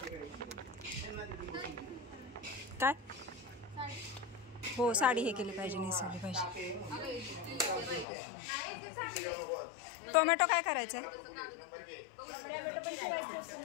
काय हो, साडी हे केली पाहिजे, नेसवली पाहिजे. टोमॅटो काय करायचं आहे?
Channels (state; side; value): drops out; right; at 8.1 s